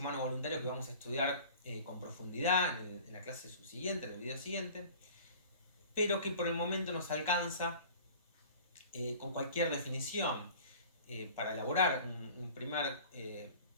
vamos a estudiar con profundidad en la clase subsiguiente, en el video siguiente, pero que por el momento nos alcanza con cualquier definición para elaborar un primer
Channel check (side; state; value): both; inverted; correlation -0.43